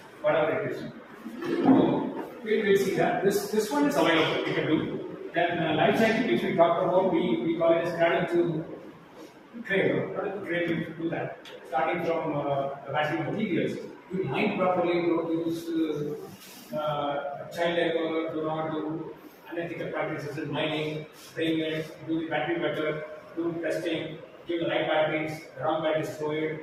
whatever it is. So, we'll see that. This one is available, we can do. Then life cycle, which we talked about, we call it as cradle to cradle. Cradle to cradle, we do that. Starting from the battery materials. You mine properly, don't use child labor, do not do unethical practices in mining, spraying it, do the battery better, do testing, give the right batteries, the wrong batteries, throw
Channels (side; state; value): both; identical; correlation 1.00